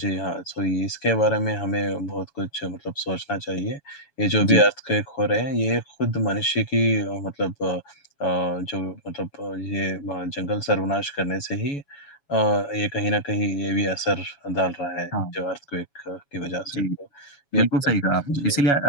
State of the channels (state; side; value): late; right; 7.1 ms